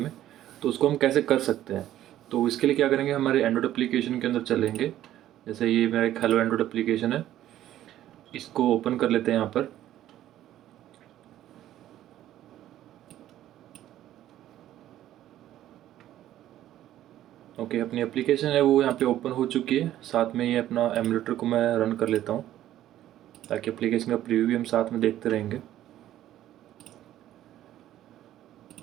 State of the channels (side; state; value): left; quieter; 12.8 dB